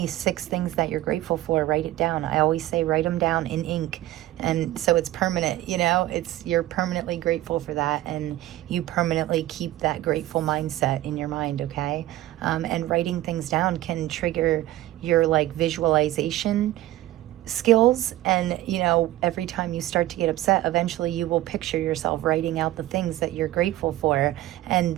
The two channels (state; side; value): quieter; left; 15.6 dB